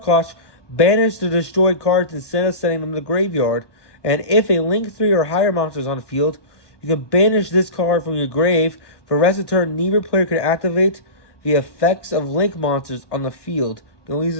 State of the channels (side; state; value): right; late; 1.1 ms